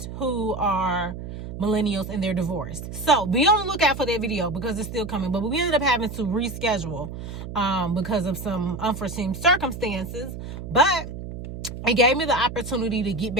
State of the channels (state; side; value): noise; right; hum, 9 dB below the sound